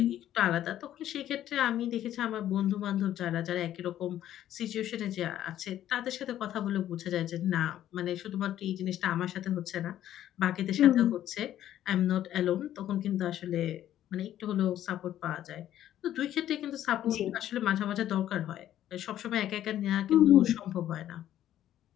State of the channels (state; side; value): quieter; right; 12.0 dB